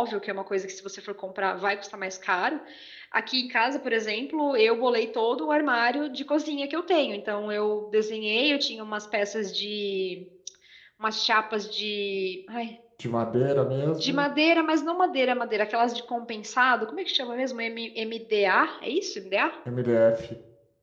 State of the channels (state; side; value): identical; both; correlation 1.00